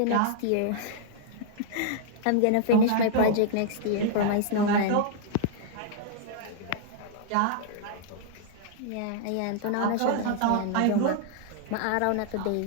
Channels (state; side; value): different; both; correlation -0.01